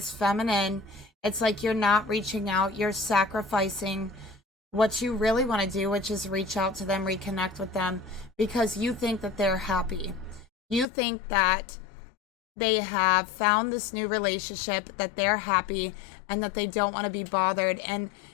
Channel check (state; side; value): drops out; right; at 10.9 s